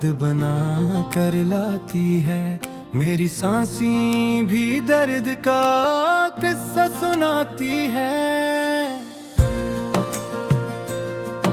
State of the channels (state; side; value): identical; both; correlation 1.00